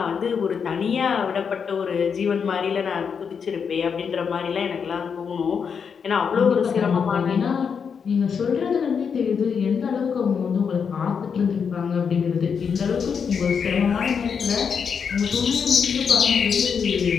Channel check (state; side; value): quieter; right; 6.5 dB